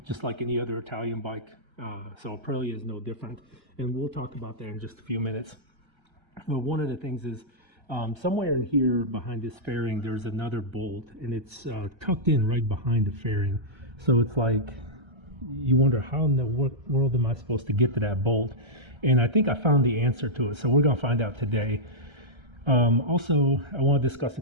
just like any other Italian bike. So Aprilia is no different, and we'll talk about that in just a few minutes. One of the things is somewhere here behind this fairing, there's another bolt, and it's tucked in right behind the fairing. So it's like you wonder, how in the world am I supposed to get to that bolt? And I think I found the answer to it, so we're going to find out today. Also, I want to discuss a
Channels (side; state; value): left; late; 1.3 ms